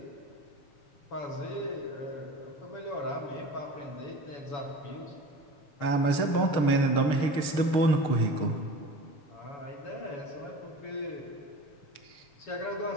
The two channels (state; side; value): late; right; 6.6 ms